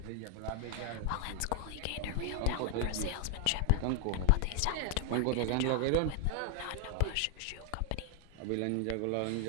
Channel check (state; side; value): different; both; correlation 0.00